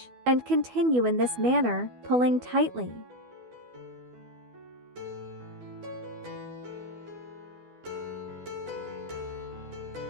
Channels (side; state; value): left; late; 12 ms